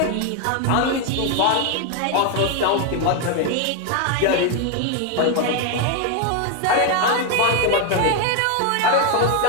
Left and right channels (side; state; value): both; different; correlation 0.01